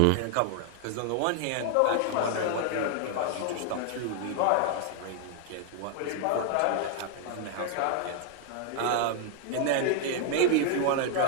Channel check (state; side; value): different; both; correlation 0.00